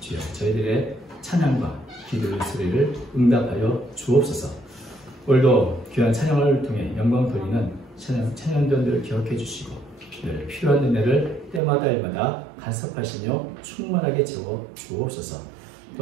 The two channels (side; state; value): left; drops out; at 11.6 s